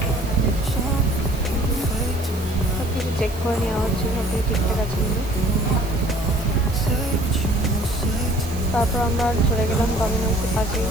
সব কিছু চেক করে নেওয়া হচ্ছে, সব কিছু ঠিকঠাক আছে কিন্তু। তারপর আমরা চলে গেলাম ডমিনোসের পাশে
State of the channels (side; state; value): right; noise; hiss, 17 dB below the sound